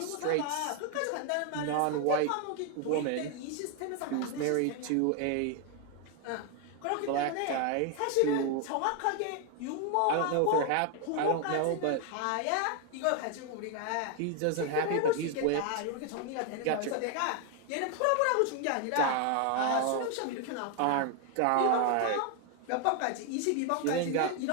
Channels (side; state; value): both; different; correlation 0.01